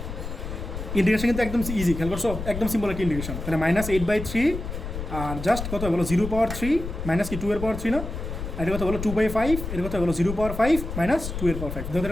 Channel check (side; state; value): left; noise; rumble, 7 dB below the sound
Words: ইন্টিগ্রেশন কিন্তু একদম ইজি, খেয়াল করছো, একদম সিম্পল একটা ইন্টিগ্রেশন। তাহলে -8/3, আর জাস্ট কত বলো 0 পাওয়ার 3 মাইনাস কি 2 এর পাওয়ার 3 না, আর এটা কত বলো 2/5, এটা কত বলো 0 পাওয়ার 5 মাইনাস 2 এর পাওয়ার 5, দেখো